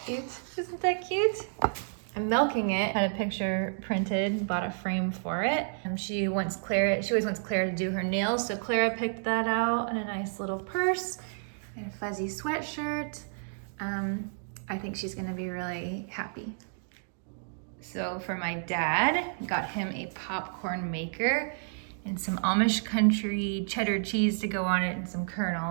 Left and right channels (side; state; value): left; silent; digital silence